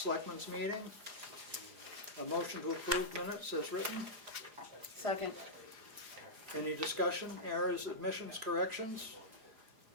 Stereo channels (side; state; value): left; late; 4.9 ms